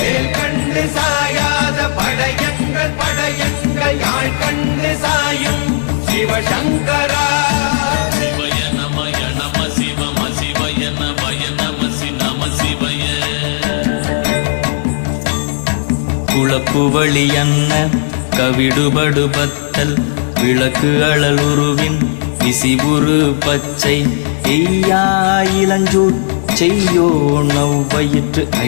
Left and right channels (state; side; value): silent; right; digital silence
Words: கண்டு சாயாத படையங்கள் யாழ் கண்டு சாயும் சிவசங்கரா சிவய நமய நம சிவம சிவய நமய நம நம சிவய குளப்புவழி அன்ன கவிடுபடு பத்தல் விளக்கு அழலுருவின் விசிபுரு பச்சை எய்யா இளஞ்சூட் செய்யோ நவ்வயிற்று